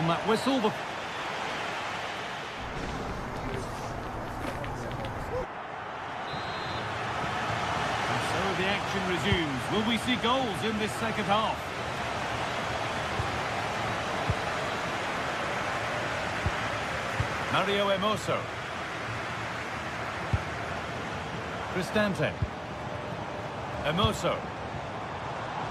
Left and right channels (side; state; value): both; identical; correlation 1.00